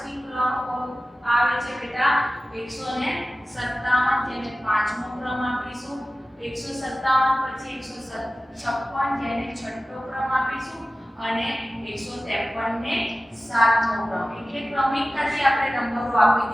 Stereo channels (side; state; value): both; normal; correlation 0.96